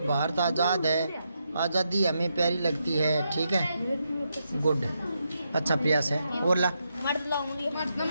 भारत आज़ाद है, आज़ादी हमें प्यारी लगती है, ठीक है, गुड, अच्छा प्रयास है। और ला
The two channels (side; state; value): both; inverted; correlation -0.82